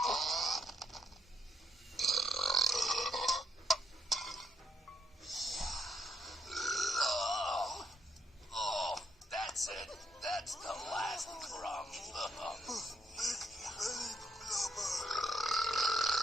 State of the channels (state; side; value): normal; both; correlation 0.74